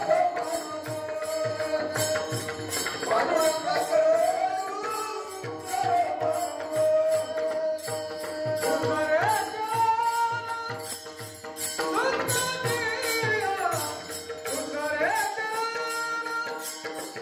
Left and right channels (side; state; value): both; identical; correlation 1.00